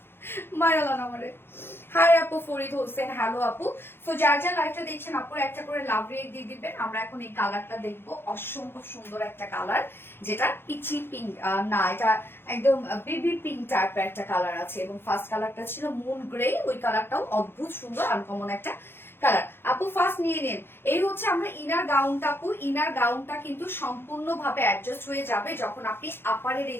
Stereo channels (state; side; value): late; right; 0.11 ms